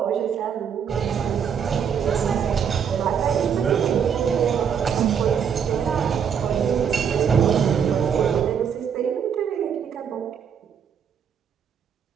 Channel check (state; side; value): quieter; left; 7.6 dB